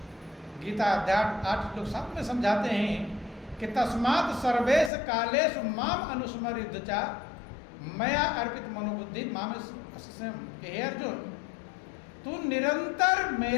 गीता अध्याय 8 श्लोक 7 में समझाते हैं कि तस्मात् सर्वेश कालेषु माम अनुस्मर चा मया अर्पित मनोबुद्धि माम स्वयं। हे अर्जुन, तू निरंतर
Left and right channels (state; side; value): drops out; right; at 4.9 s